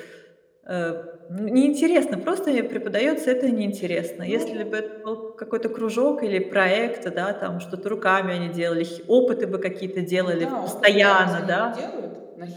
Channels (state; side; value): identical; both; correlation 1.00